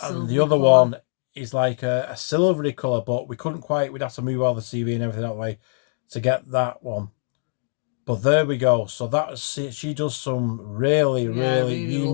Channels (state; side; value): silent; right; digital silence